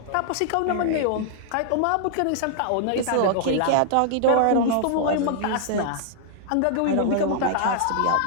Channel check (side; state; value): both; different; correlation -0.01